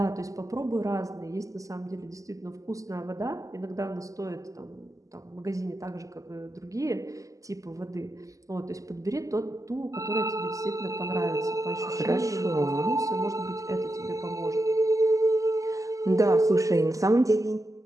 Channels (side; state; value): left; late; 0.16 ms